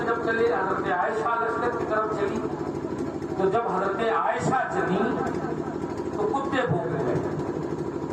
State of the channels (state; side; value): identical; both; correlation 1.00